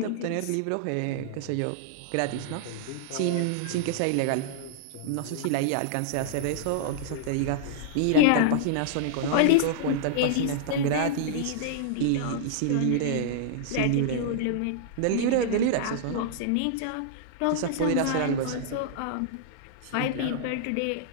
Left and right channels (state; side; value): different; both; correlation -0.01